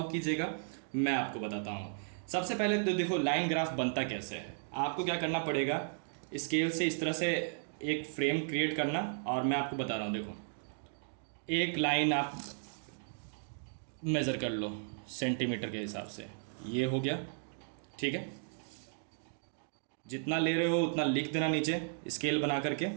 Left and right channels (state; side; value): silent; left; digital silence